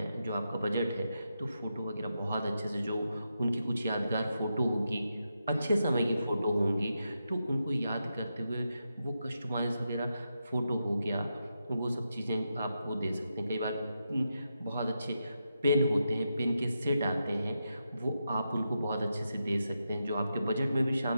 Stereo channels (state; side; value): inverted; both; correlation -0.86